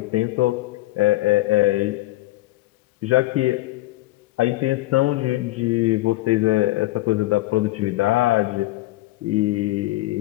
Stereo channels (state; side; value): quieter; right; 18.2 dB